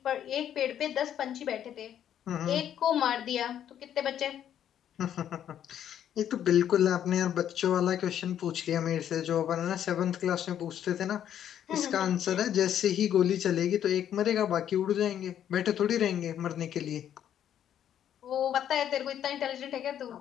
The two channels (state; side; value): quieter; right; 10.1 dB